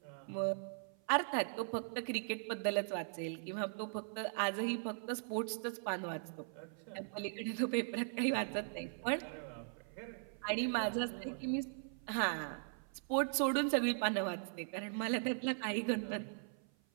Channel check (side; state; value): left; silent; 51 dB below the other